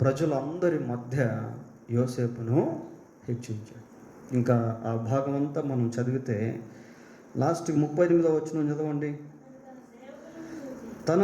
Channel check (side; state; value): both; identical; correlation 1.00